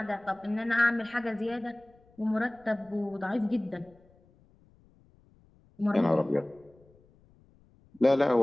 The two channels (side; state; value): left; noise; rumble, 30 dB below the sound